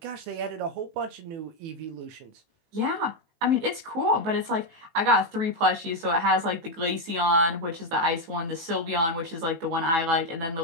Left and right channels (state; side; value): late; left; 18 ms